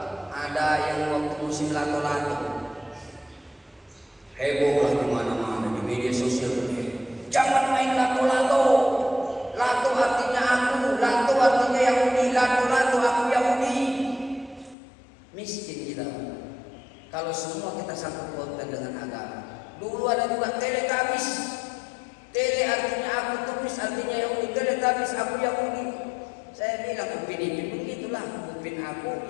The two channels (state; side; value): drops out; right; at 14.8 s